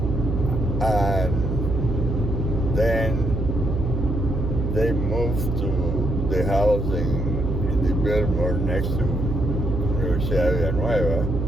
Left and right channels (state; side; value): noise; right; hum, 2 dB below the sound